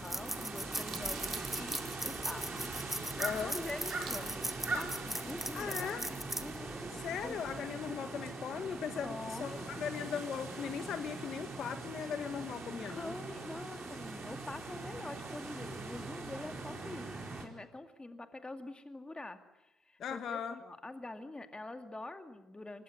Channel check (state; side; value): normal; both; correlation 0.74